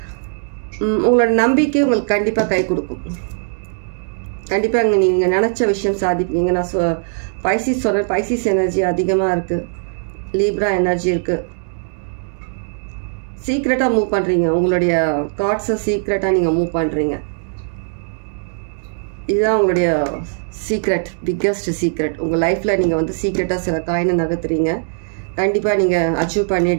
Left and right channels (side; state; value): left; silent; digital silence